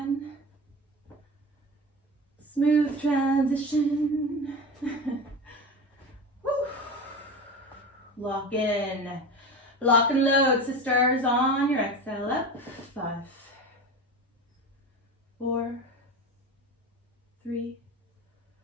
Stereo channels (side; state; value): both; normal; correlation 0.28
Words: Smooth transition. Woo. Lock in. Lock and load, sisters, on your exhale. Up. 5, 4, 3,